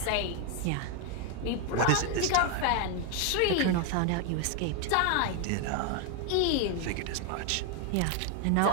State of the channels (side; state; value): both; different; correlation 0.01